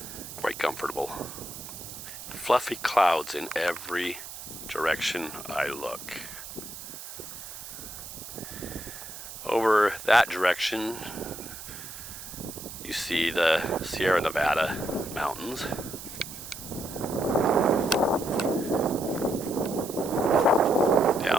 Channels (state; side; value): noise; right; hiss, 11 dB below the sound